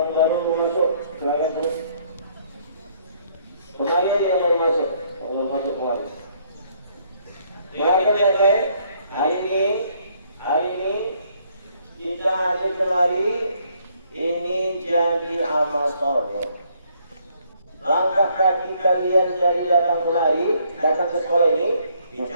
baru masuk, silakan terus. Kembali yang baru masuk, kembali. Silakan baik-baik. Hari ini kita hadir kemari. Ini jadi amal soleh. Langkah kaki kalian dari datang kemari, datang ke sekolah ini,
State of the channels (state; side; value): inverted; both; correlation -0.67